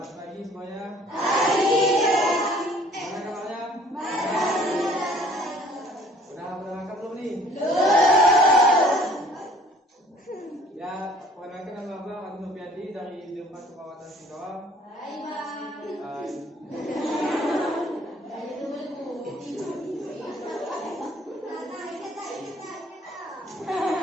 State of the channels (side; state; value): both; normal; correlation 0.55